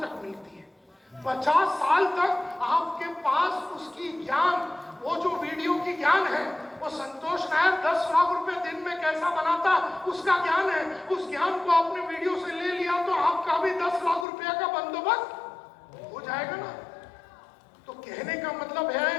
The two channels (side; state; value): right; drops out; at 14.2 s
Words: मिलती है। 50 साल तक आपके पास उसकी ज्ञान, वो जो वीडियो की ज्ञान है, वो संतोष नायर 10 लाख रुपए दिन में कैसा बनाता उसका ज्ञान है। उस ज्ञान को आपने वीडियो से ले लिया तो आपका भी 10 लाख रुपया का बंदोबस्त हो जाएगा ना। तो कहने का मतलब है